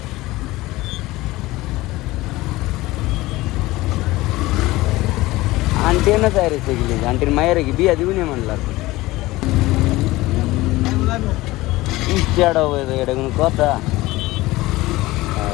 aunty ना सारे से गिले aunty मायर की बिया दिवने म्हणला इस्टाडो वे एडगन कोता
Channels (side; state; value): right; quieter; 19.0 dB